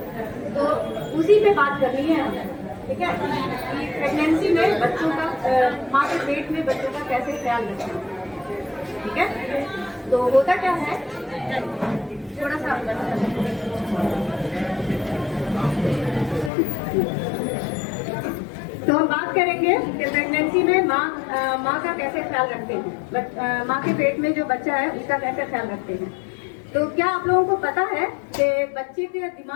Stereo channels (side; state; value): right; drops out; at 16.5 s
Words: तो उसी पे बात करनी है हमें, ठीक है? कि प्रेगनेंसी में बच्चों का, माँ के पेट में बच्चों का कैसे ख्याल रखें, ठीक है? तो होता क्या है, थोड़ा सा तो हम बात करेंगे कि प्रेगनेंसी में माँ का कैसे ख्याल रखते हैं, माँ के पेट में जो बच्चा है उसका कैसे ख्याल रखते हैं। तो क्या आप लोगों को पता है कि बच्चे के